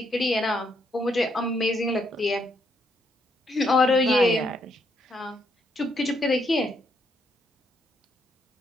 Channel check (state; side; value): normal; both; correlation 0.74